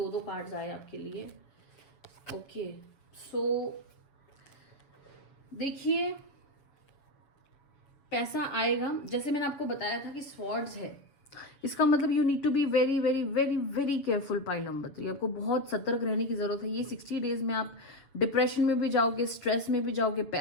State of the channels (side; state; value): right; late; 7.1 ms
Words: कार्ड्स आए आपके लिए। ओके, सो देखिए पैसा आएगा, जैसे मैंने आपको बताया था कि स्वॉर्ड्स है, इसका मतलब you need to be very very very very careful pile number 3। आपको बहुत सतर्क रहने की जरूरत है। ये 60 डेज में आप डिप्रेशन में भी जाओगे, स्ट्रेस में भी जाओगे,